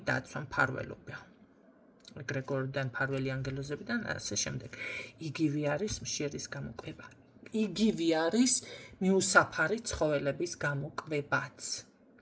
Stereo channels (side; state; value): both; identical; correlation 1.00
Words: დაცვა, მფარველობა. ეგრეგორიდან, მფარველი ანგელოზებიდან და ასე შემდეგ. იგივე არის მშერის გამოკვება. იგივე არის მიუსაფარი ცხოველების გამოკვებაც.